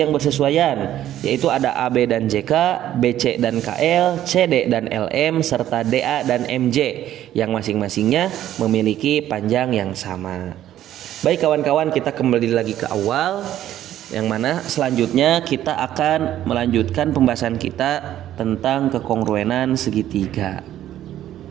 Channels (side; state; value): left; quieter; 12.3 dB